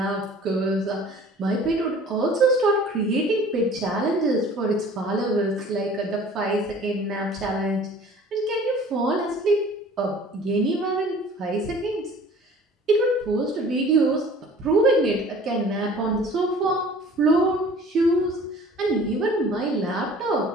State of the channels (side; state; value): both; normal; correlation 0.48